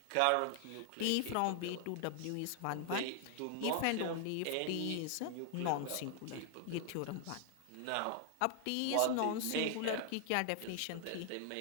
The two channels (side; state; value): both; different; correlation 0.00